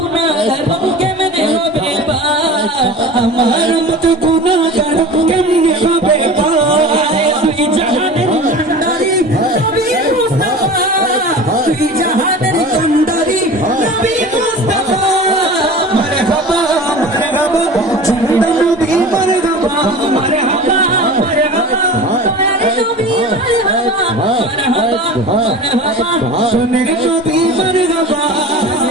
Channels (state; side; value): normal; both; correlation 0.36